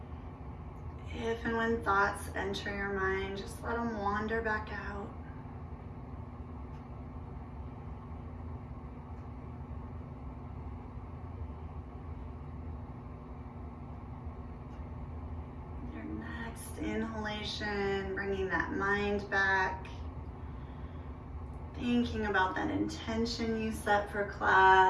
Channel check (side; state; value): both; identical; correlation 1.00